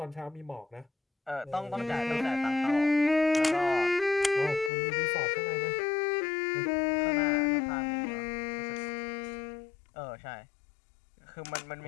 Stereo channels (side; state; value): right; drops out; at 4.7 s